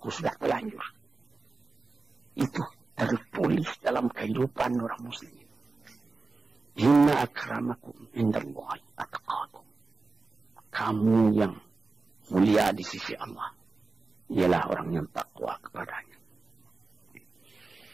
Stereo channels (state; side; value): quieter; left; 3.8 dB